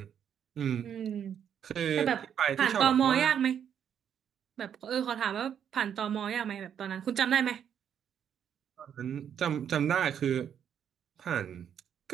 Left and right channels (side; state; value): left; quieter; 8.6 dB